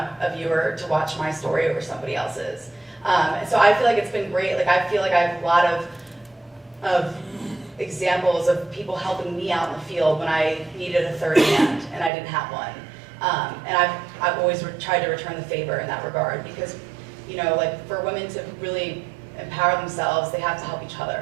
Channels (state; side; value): drops out; left; at 12.1 s